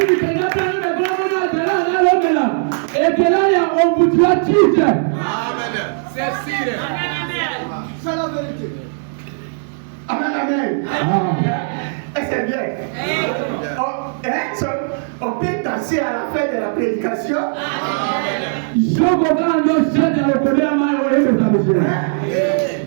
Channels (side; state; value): left; silent; digital silence